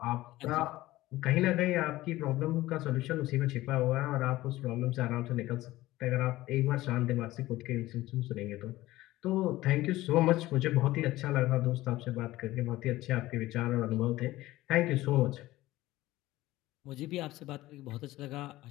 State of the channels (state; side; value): quieter; right; 17.1 dB